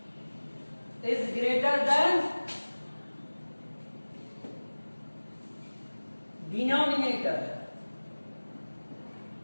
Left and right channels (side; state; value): both; inverted; correlation -1.00